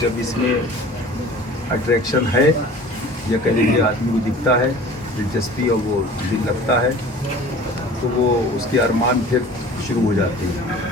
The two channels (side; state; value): both; normal; correlation 0.44